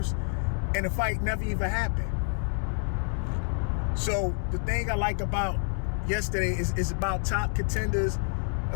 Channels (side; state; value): right; silent; 59 dB below the other